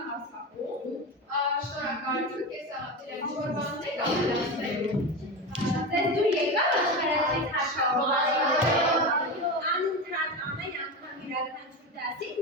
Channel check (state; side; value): normal; both; correlation 0.21